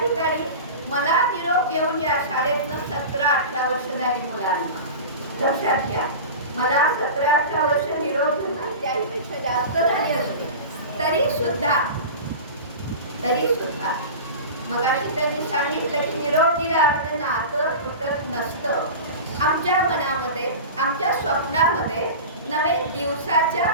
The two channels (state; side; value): inverted; both; correlation -0.31